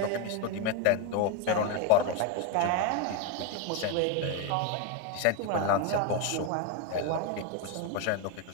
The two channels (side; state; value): both; different; correlation 0.02